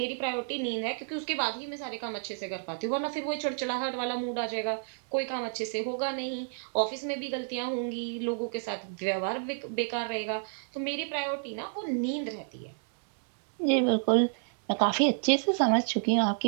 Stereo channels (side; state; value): left; silent; digital silence